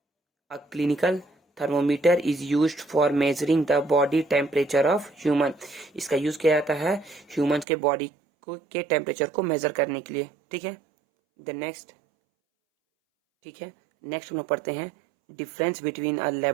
a clinical thermometer is used for measuring the body temperature of human, इसका यूज किया जाता है ह्यूमन के बॉडी को के टेम्परेचर को मेजर करने के लिए। ठीक है, द नेक्स्ट, ठीक है, नेक्स्ट हम लोग पढ़ते हैं difference between a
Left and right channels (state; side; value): drops out; left; at 7.7 s